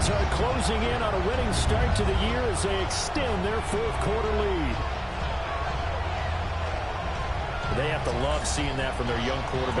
are closing in on a winning start to the year as they extend their 4th quarter lead. They have to love seeing that from their young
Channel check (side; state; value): both; identical; correlation 1.00